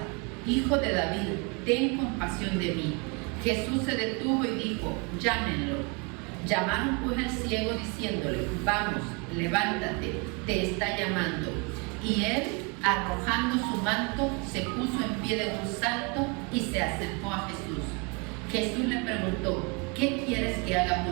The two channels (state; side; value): quieter; left; 31.5 dB